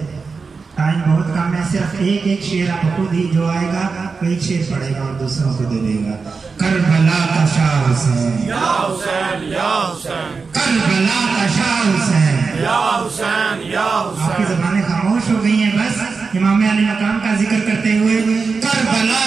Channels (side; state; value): left; quieter; 4.7 dB